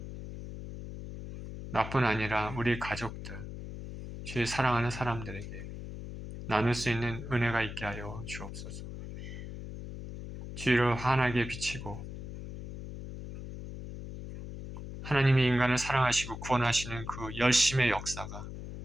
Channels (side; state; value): left; noise; hum, 9 dB below the sound